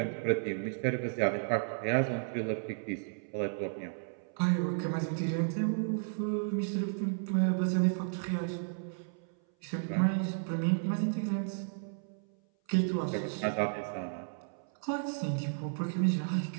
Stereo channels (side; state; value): left; silent; 56 dB below the other